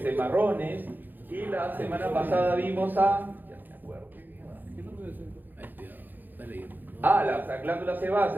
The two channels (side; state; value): left; late; 0.088 ms